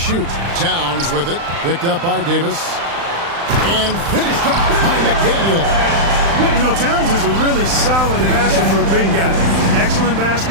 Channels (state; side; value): late; left; 35 ms